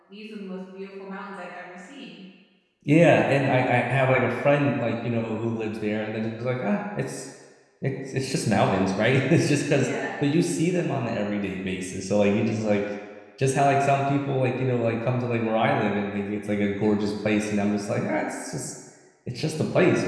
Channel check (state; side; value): identical; both; correlation 1.00